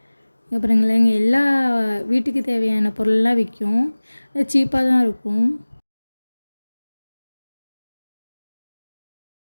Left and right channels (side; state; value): both; inverted; correlation -1.00